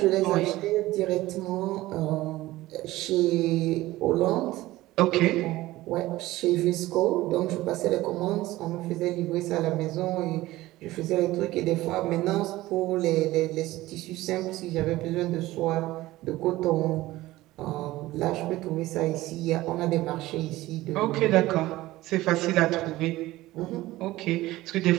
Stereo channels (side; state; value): left; quieter; 17.3 dB